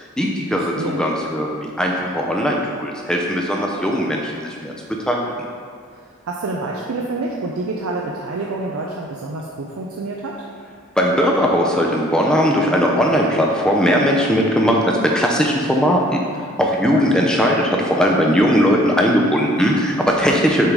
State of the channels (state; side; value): normal; both; correlation 0.58